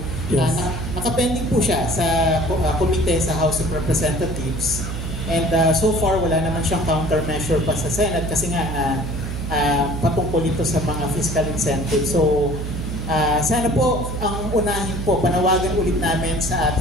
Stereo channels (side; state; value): right; noise; hum, 5 dB below the sound